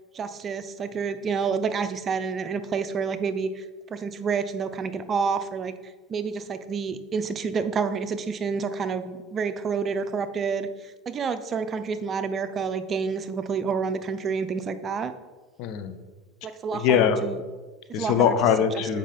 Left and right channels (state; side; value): normal; both; correlation 0.45